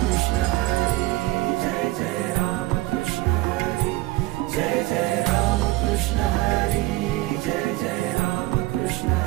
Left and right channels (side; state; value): left; quieter; 19.1 dB